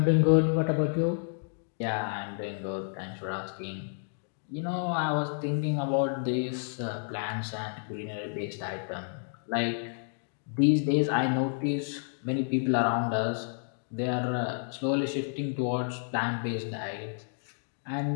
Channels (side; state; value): right; silent; digital silence